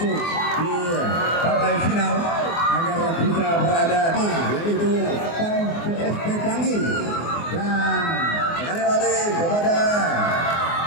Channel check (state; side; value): late; right; 24 ms